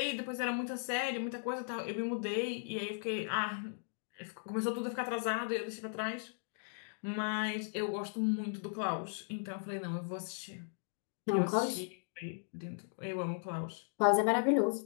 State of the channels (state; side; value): silent; right; digital silence